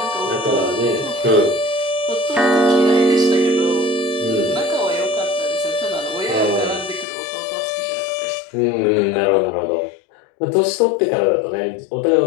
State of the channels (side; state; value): right; drops out; at 7.1 s